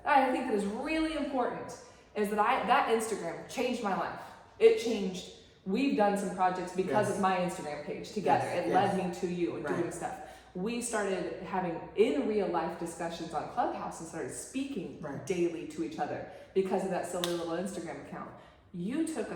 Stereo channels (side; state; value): both; identical; correlation 1.00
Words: I think that is really important is that that Instagram changed my life. It changed, we've done some projects because of my Instagram page together. It led me to you and doing stuff. We started having in real life discussions on Clubhouse and started speaking daily to each other because of that silly little Instagram account. You took